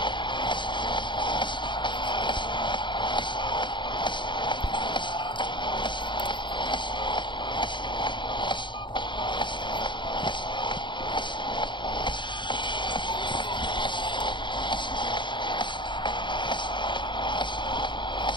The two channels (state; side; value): late; right; 0.23 ms